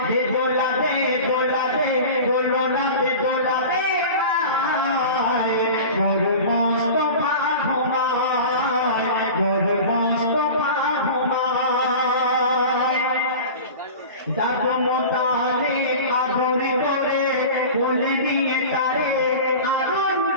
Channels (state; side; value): inverted; both; correlation -0.35